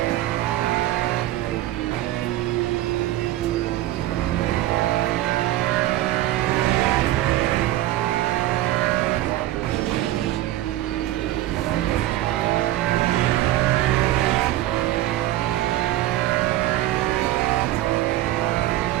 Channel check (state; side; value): quieter; left; 15.2 dB